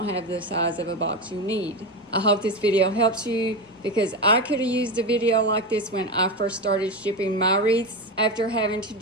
have the size of a box you need. I hope this video helps you, because I could have used a video like this when I first started shipping my wreaths. After having to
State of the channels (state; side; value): normal; both; correlation 0.18